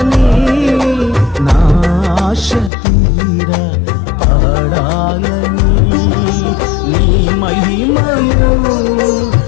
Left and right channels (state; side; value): drops out; right; at 2.7 s